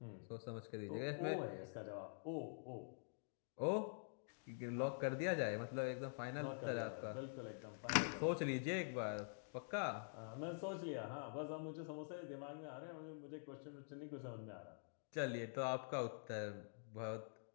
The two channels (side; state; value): right; silent; digital silence